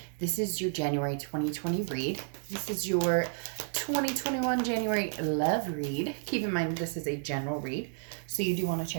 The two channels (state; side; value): silent; left; digital silence